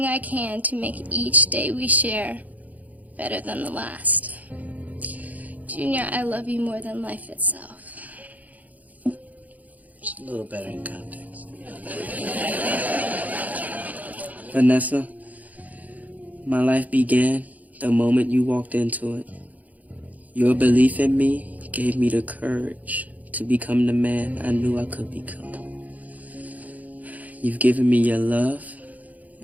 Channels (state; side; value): late; left; 0.077 ms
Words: I can to make each day we share better than the last. Junior, I love you more than life itself. Just a little better in context. Vanessa, my life began the moment you walked into it. Your belief in me gave me the courage to become the man I knew I could become. You've given me your love